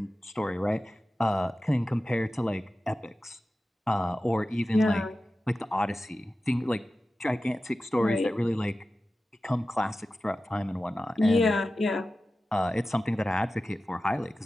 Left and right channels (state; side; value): normal; both; correlation 0.94